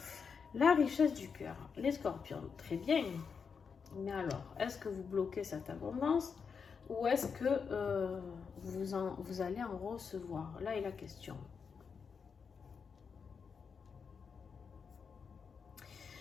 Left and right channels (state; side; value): quieter; right; 5.9 dB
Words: La richesse du cœur. Les scorpions, très bien. Mais alors, est-ce que vous bloquez cette abondance ou est-ce que vous allez en recevoir? Là est la question.